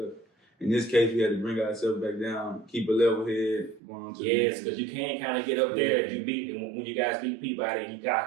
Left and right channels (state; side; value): drops out; left; at 3.8 s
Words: In this case, we had to bring ourselves back down, keep a level head, going on to because you can't kind of get up there if you beat, and when you guys beat Peabody, and you